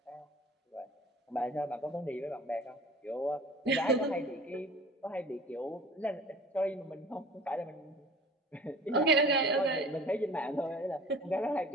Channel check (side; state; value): both; normal; correlation 0.44